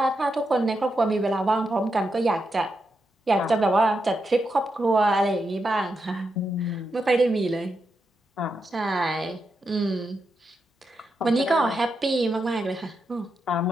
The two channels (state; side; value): normal; both; correlation 0.85